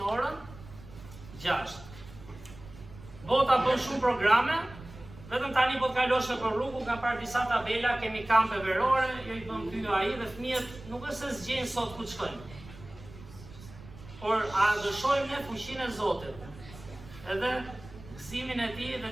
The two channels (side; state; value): right; noise; rumble, 18 dB below the sound